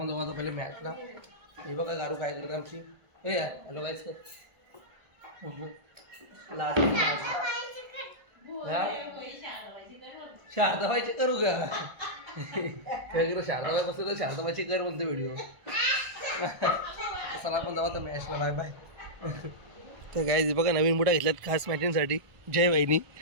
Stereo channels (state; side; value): late; left; 1.5 ms